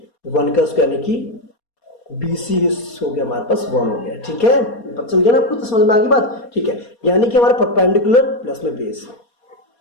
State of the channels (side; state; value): right; late; 4.2 ms